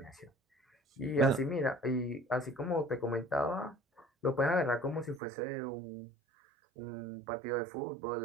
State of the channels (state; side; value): drops out; left; at 5.2 s